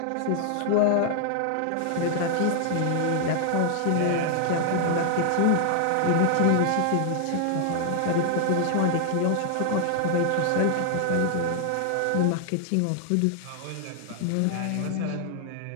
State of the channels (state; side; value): different; both; correlation 0.00